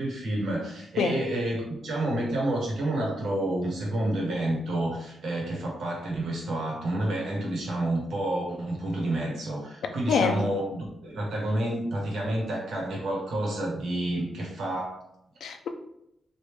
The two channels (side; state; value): both; normal; correlation 0.81